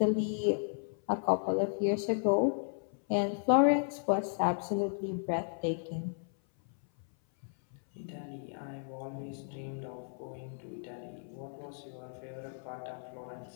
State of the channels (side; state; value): right; silent; 55 dB below the other